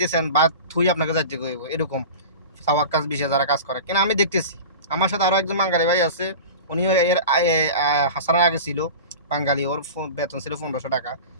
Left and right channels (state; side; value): inverted; both; correlation -0.33